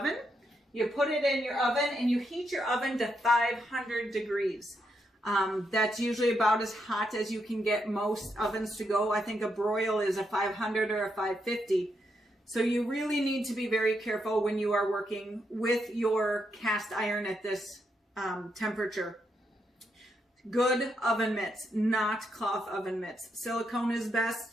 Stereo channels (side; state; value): both; normal; correlation 0.80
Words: You put it in your oven and you heat your oven to 500 degrees. That's usually about as hot as you can get most ovens to go. I think a broil is a 500 or a 550. So you really need to be very careful when you are working with your cast iron at this temperature. Good oven mitts, not cloth oven mitts. Silicone is